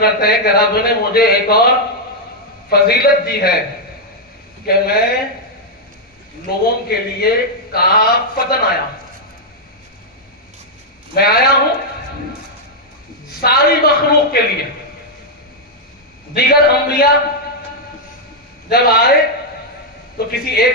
ہیں کہ رب نے مجھے ایک اور فضیلت دی ہے کہ میں لوگوں کے لیے کافتن آیا ہوں، میں آیا ہوں ساری مخلوق کے لیے۔ دیگر انبیاء جب آئے تو کسی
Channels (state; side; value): normal; both; correlation -0.03